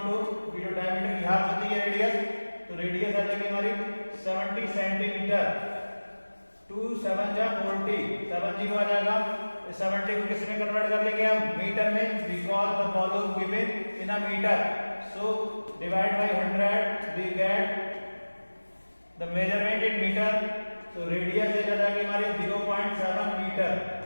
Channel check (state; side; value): inverted; both; correlation -1.00